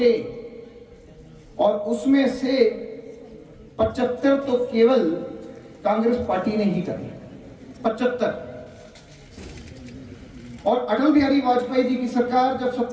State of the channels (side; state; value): both; identical; correlation 1.00